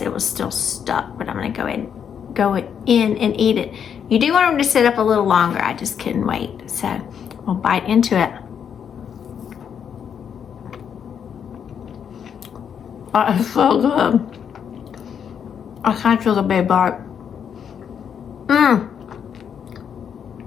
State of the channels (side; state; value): right; quieter; 7.9 dB